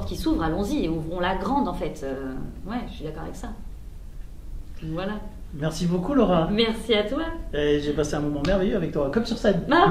qui s'ouvre, allons-y, ouvrons-la grande en fait. Ouais, je suis d'accord avec ça. Voilà. Merci beaucoup Laura. Merci à toi. Et j'ai passé un moment merveilleux avec toi, comme sur scène. Ah,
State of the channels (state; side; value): identical; both; correlation 1.00